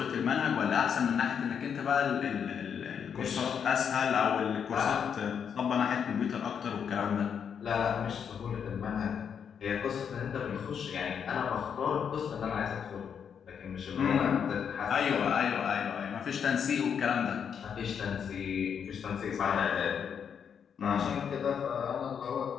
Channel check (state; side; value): quieter; right; 7.5 dB